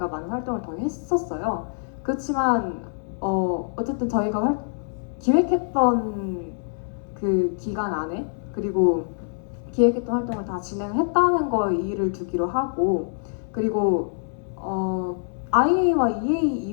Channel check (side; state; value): right; silent; 62 dB below the other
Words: 많은 활동을 더 했었어요. 그렇지만 어쨌든 저희가 기획했던 그 기간 안에 그리고 기획했던 활동을 다 진행했다는 거에 이의를 두기로 하고 그리고 IA와 EA